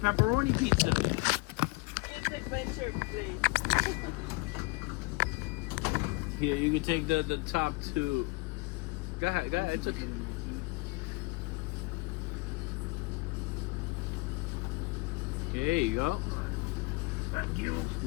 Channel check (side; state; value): right; quieter; 26.4 dB